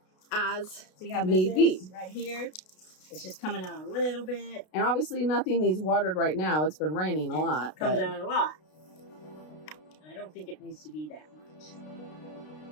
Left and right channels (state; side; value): late; right; 32 ms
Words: As See how need be. Right here. It's just coming out a little bit. And obviously nothing needs watered right now. It's been raining a lot. It comes out a lot. I don't think it needs to be that much.